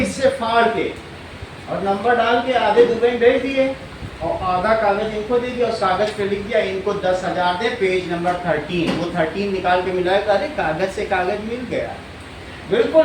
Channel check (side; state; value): both; identical; correlation 1.00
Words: फाड़ के और नंबर डाल के आधे दुबई भेज दिए और आधा कागज इनको दे दिया, उस कागज पे लिख दिया इनको 10,000 दे, पेज नंबर 13, वो 13 निकाल के मिलाया, अरे कागज से कागज मिल गया।